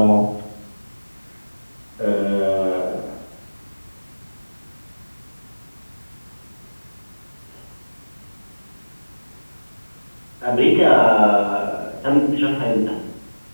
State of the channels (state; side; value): inverted; both; correlation -1.00